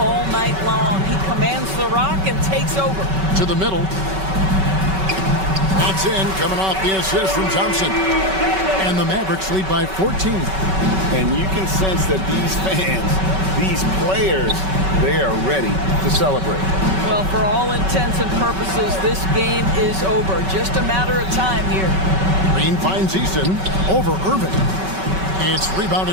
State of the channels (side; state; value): left; late; 5.3 ms